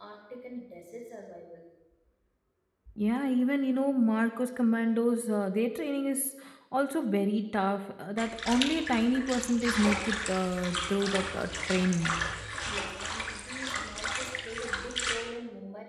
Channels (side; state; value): both; identical; correlation 1.00